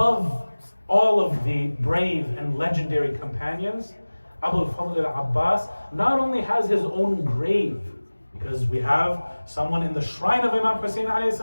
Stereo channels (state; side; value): inverted; both; correlation -1.00